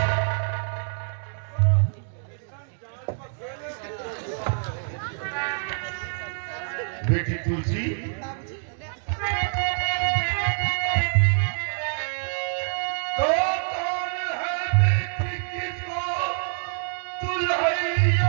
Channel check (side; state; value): left; silent; digital silence